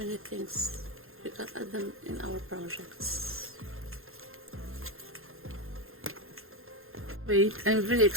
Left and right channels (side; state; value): left; late; 0.61 ms